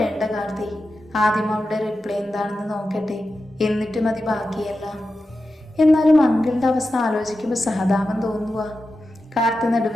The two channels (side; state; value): both; normal; correlation 0.91